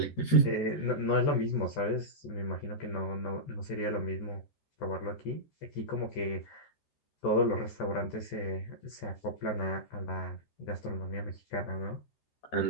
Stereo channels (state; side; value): late; right; 14 ms